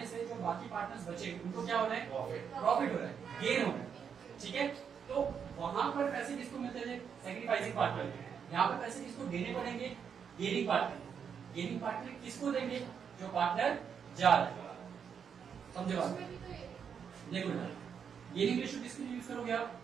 से जो बाकी पार्टनर्स बचे उनको क्या हो रहा है? प्रॉफिट हो रहा है, गेन हो रहा है, ठीक है। तो वहां पर पैसे किसको मिलते थे? Sacrificing partner. यहाँ पर पैसे किसको देने पड़ेंगे? Gaining partner. गेनिंग पार्टनर किसको देंगे? जो पार्टनर जा रहा है, समझे बात? देखो ना, गेनिंग रेशियो किसके लिए यूज करोगे आप?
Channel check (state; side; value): quieter; left; 7.2 dB